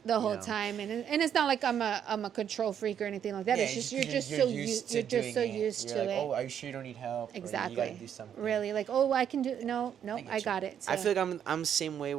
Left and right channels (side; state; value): left; quieter; 9.0 dB